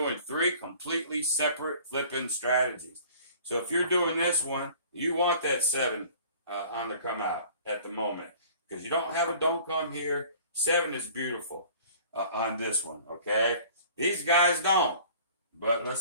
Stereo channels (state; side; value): inverted; both; correlation -0.49